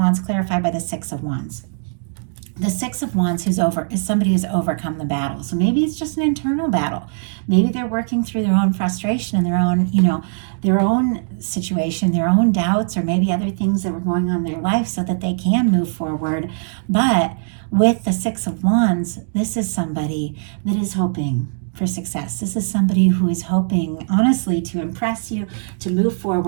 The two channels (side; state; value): left; silent; digital silence